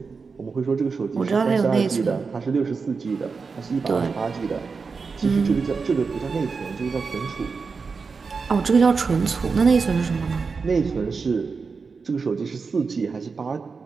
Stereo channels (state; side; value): quieter; left; 4.9 dB